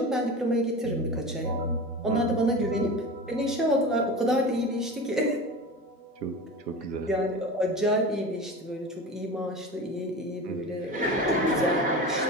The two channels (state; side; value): normal; both; correlation 0.30